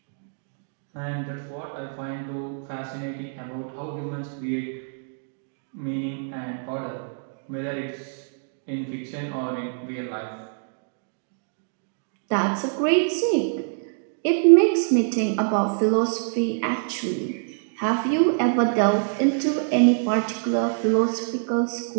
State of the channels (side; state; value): left; silent; digital silence